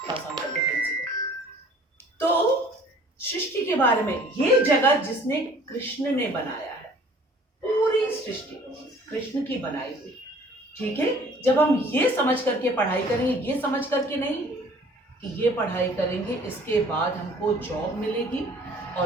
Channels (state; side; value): normal; both; correlation 0.52